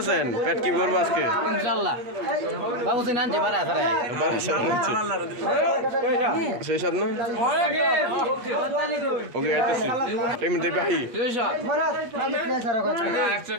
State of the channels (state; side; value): late; left; 8.4 ms